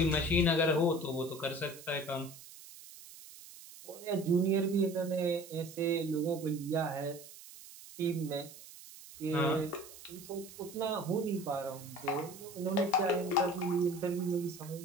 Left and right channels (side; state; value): right; noise; hiss, 17 dB below the sound